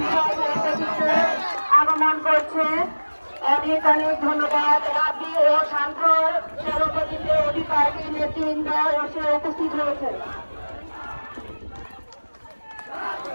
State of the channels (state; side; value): inverted; both; correlation -1.00